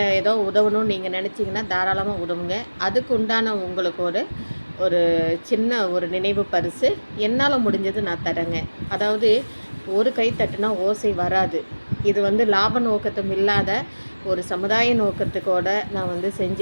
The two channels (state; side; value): inverted; both; correlation -1.00